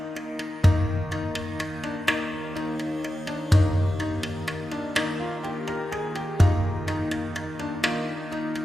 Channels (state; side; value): normal; both; correlation 0.91